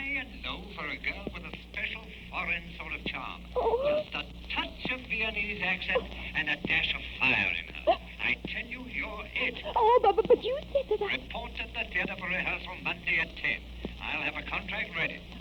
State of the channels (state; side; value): identical; both; correlation 1.00